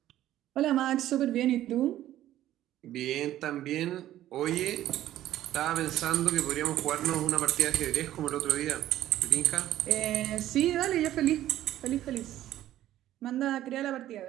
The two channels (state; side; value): quieter; left; 13.3 dB